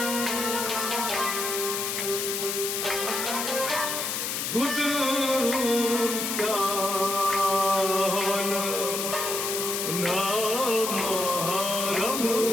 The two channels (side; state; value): left; noise; hiss, 2 dB below the sound